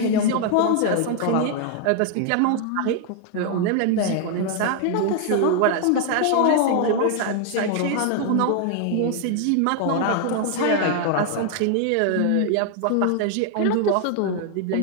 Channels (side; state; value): both; different; correlation 0.00